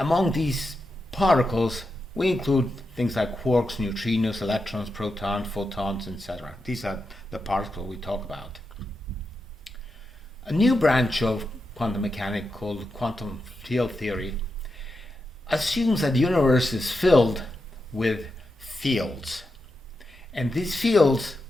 these particles, we include things like quarks, neutrinos, electrons, protons, photons, etc. These are the particles we talk about. A new branch of quantum mechanics called quantum field theory assumes that the universe is filled with fields. And these fields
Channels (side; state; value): both; normal; correlation 0.87